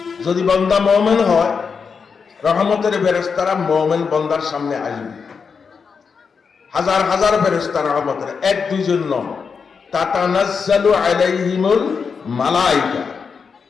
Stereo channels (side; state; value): right; quieter; 5.7 dB